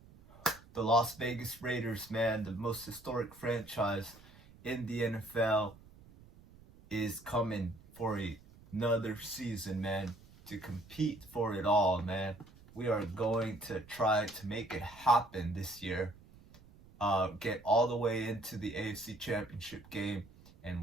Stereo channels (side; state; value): right; noise; rumble, 23 dB below the sound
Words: the Las Vegas Raiders, man, the most historic franchise in the NFL is coming for another season, man, to compete for it all, man. We are going to try to make it happen this year. Get all the way into the AFC Championship game